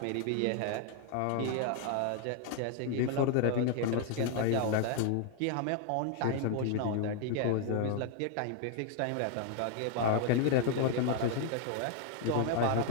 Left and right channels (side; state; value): both; different; correlation 0.00